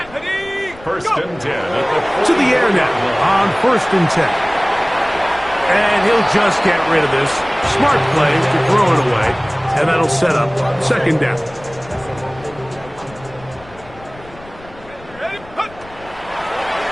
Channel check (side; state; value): left; noise; rumble, 21 dB below the sound